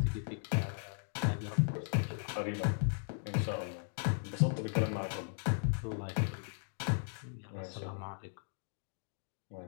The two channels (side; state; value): right; silent; digital silence